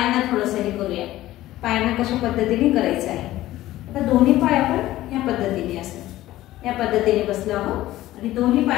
थोडंसं हे करूया, पायांना कशा पद्धतीने करायचं आहे। आता दोन्ही पाय आपण ह्या पद्धतीने असं या पद्धतीने बसलो आहोत आणि दोन्ही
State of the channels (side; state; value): right; quieter; 15.5 dB